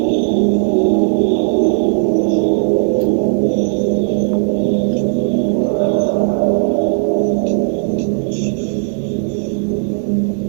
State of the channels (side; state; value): left; silent; digital silence